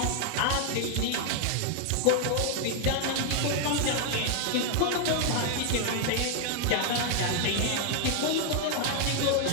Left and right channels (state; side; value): different; both; correlation 0.00